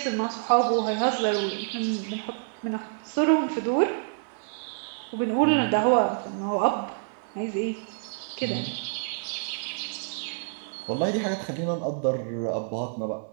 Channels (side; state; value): left; silent; digital silence